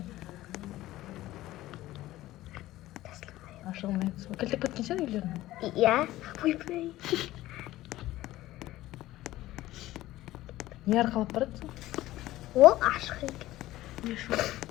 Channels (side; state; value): right; quieter; 16.0 dB